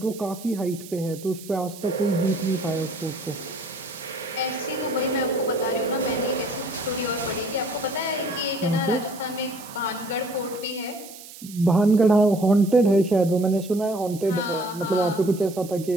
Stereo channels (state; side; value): noise; right; hiss, 16 dB below the sound